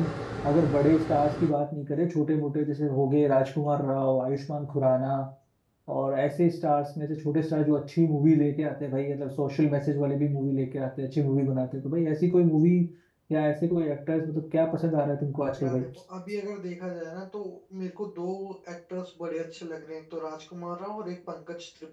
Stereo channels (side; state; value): both; identical; correlation 1.00